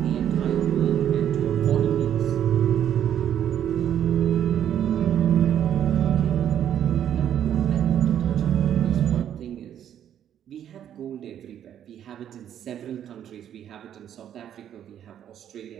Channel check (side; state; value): left; quieter; 10.1 dB